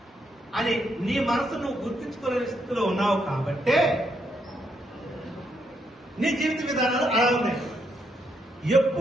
అని నీ మనసు నువ్వు గుర్తించుకునే స్థితిలో ఉన్నావు కాబట్టే నీ జీవిత విధానాలు అలా ఉన్నాయి.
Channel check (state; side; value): normal; both; correlation 0.77